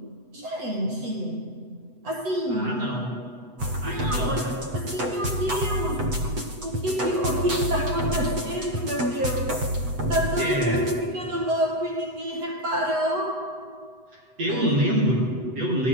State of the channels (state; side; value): late; left; 8.0 ms